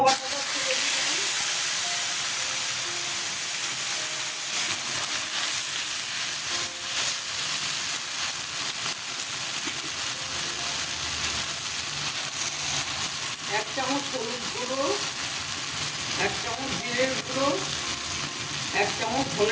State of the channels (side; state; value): both; identical; correlation 1.00